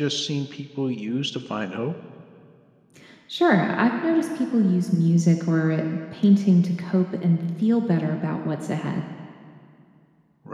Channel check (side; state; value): both; identical; correlation 1.00